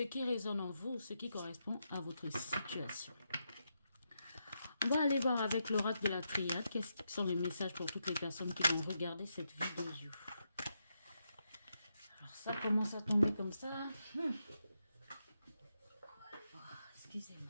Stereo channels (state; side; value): inverted; both; correlation -0.84